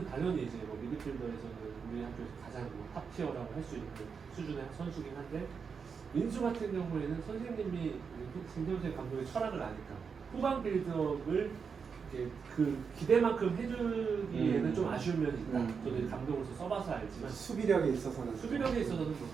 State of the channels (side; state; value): left; quieter; 5.9 dB